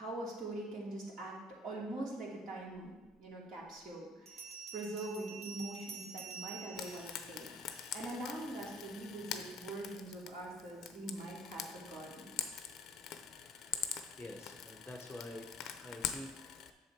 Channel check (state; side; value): normal; both; correlation 0.55